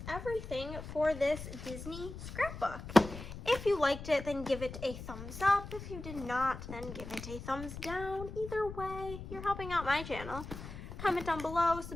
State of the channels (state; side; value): noise; left; rumble, 10 dB below the sound